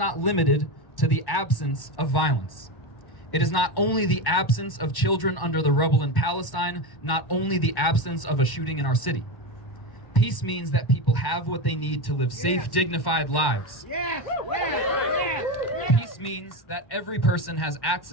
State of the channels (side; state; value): right; late; 1.1 ms